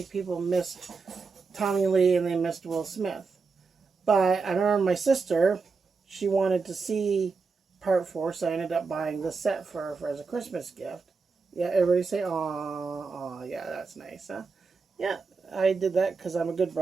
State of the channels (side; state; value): left; quieter; 4.7 dB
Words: people missed Tommy Lee and they missed Will Smith. But I remember my sister, she wanted to see part 4, so I ended up buying the set for her as a Christmas gift. Yeah, everybody say, "Aw, yeah, that's nice, huh?" Yeah, I did that because I'm a good